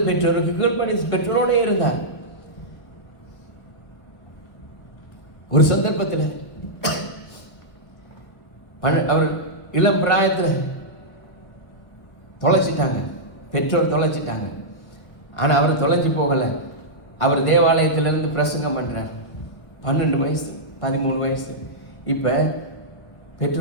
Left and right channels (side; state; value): right; late; 1.5 ms